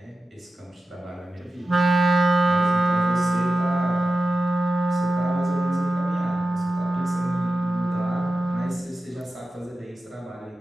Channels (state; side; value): normal; both; correlation 0.93